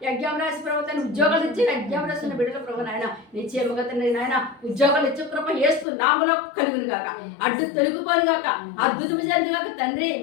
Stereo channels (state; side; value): drops out; right; at 5.9 s